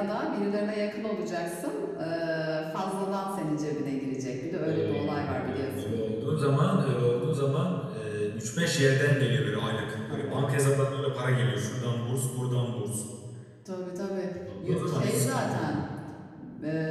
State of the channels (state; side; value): identical; both; correlation 1.00